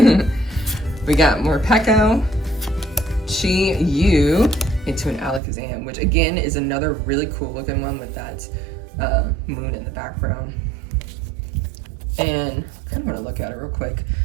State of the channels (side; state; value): left; drops out; at 5.4 s